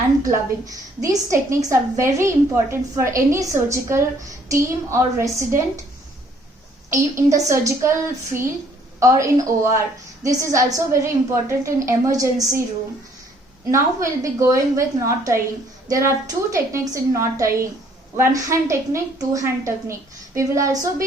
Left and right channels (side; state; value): both; normal; correlation 0.62